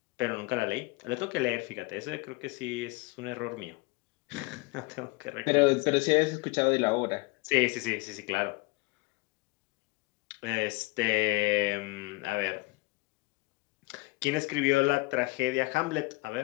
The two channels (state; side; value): quieter; right; 23.5 dB